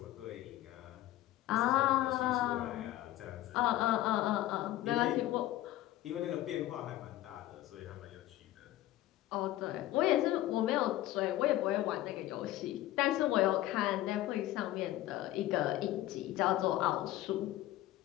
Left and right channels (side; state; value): right; quieter; 15.0 dB